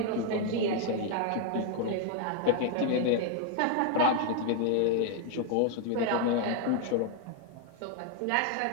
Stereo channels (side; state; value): both; different; correlation 0.00